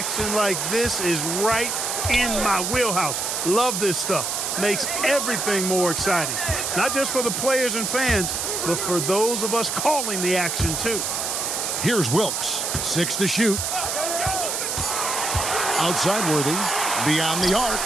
like this is right in my wheelhouse. Love this stuff. Makes everything more exciting. Not just for the players and fans, but for those of us calling the action, too. Here's Wilkes. 6 to shoot. Outside Worthy. Beyond the arc.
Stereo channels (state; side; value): noise; right; hiss, 1 dB below the sound